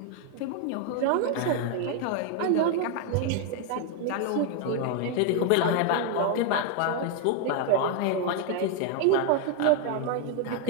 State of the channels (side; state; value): both; different; correlation 0.00